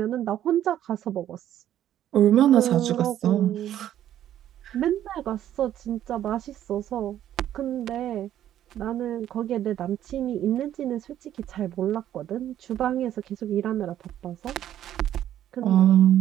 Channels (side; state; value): left; quieter; 11.6 dB